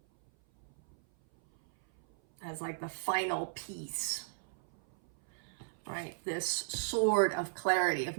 as like the final piece, right? This sword of clarity, of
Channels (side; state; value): left; silent; 54 dB below the other